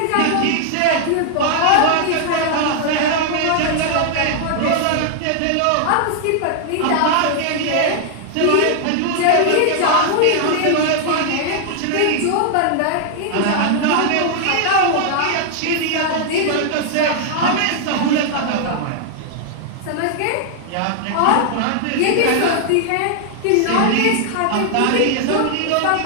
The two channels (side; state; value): both; different; correlation 0.00